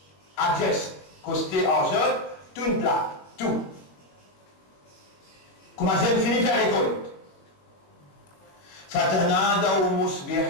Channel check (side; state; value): right; late; 21 ms